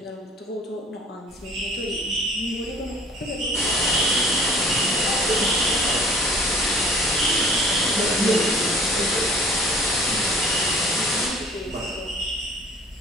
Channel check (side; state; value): both; normal; correlation 0.50